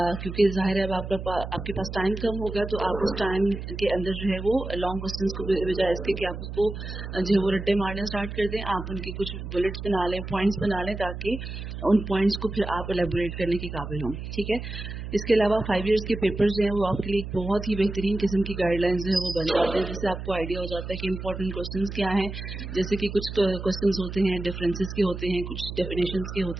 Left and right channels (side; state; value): right; noise; hum, 8 dB below the sound